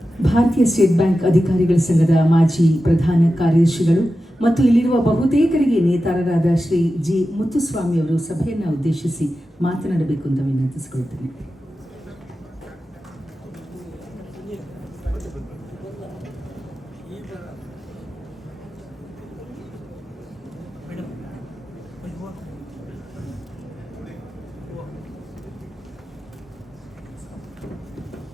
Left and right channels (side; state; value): both; normal; correlation 0.92